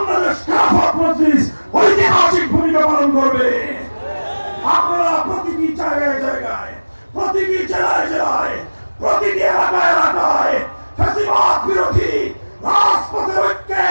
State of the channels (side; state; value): both; inverted; correlation -1.00